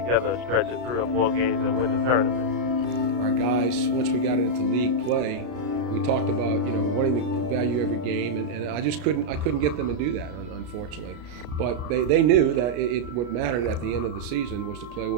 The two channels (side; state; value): left; late; 33 ms